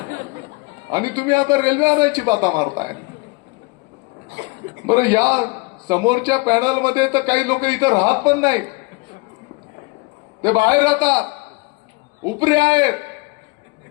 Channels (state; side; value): quieter; right; 26.3 dB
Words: आणि तुम्ही आता रेल्वे आणायची बाता मारताय. बरं, या समोरच्या पॅनलमध्ये तर काही लोक इथं राहत पण नाही, ते बाहेर राहतात, उपरे आहेत